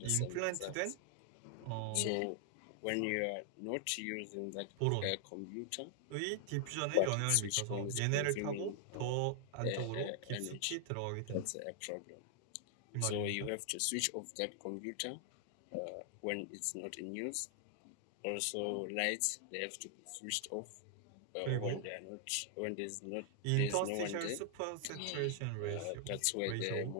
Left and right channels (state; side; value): different; both; correlation 0.00